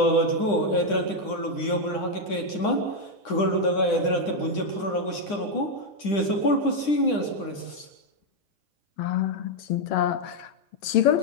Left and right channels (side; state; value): right; late; 9.9 ms